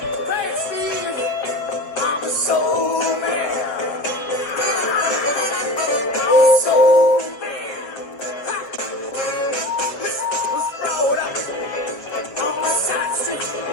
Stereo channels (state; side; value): late; right; 7.1 ms